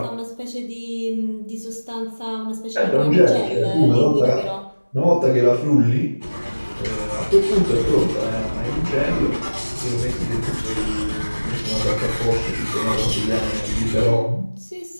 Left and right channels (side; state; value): both; inverted; correlation -1.00